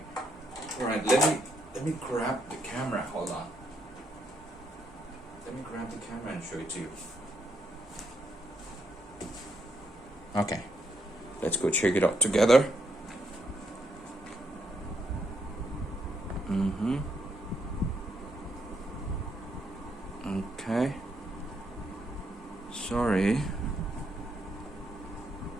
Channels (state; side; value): normal; both; correlation 0.76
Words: all right. Let me grab the camera. Hold on. Let me grab the camera and show it to you. Okay, let's go check it out together. Okay. Sorry.